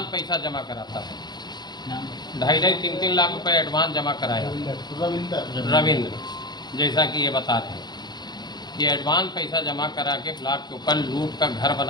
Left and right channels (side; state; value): right; late; 0.20 ms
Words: पैसा जमा कराता है, 2.5-3 लाख रुपए एडवांस जमा कराया रविंद्र, जैसा कि ये बता रहे हैं। ये एडवांस पैसा जमा करा के ब्लॉक के ऊपर लूट का घर